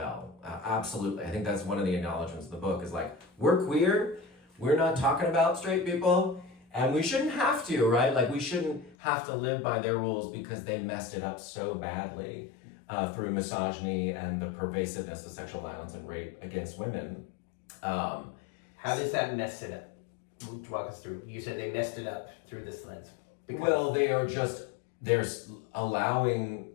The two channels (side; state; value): right; drops out; at 9.0 s